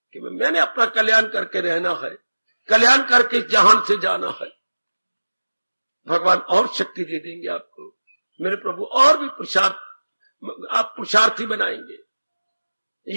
कि मैंने अपना कल्याण करके रहना है, कल्याण करके जहान से जाना है। भगवान और शक्ति दे देंगे आपको मेरे प्रभु, और भी आप पुरुषार्थी बनाएंगे।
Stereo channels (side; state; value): both; inverted; correlation -1.00